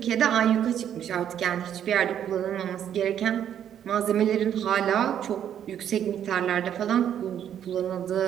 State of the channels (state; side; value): quieter; left; 9.7 dB